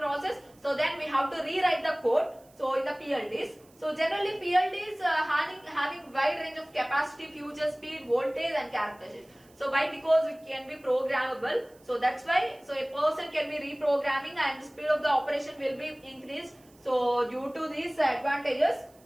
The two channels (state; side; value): noise; right; hiss, 29 dB below the sound